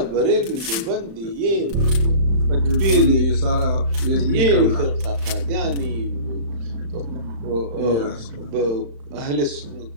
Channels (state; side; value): late; left; 35 ms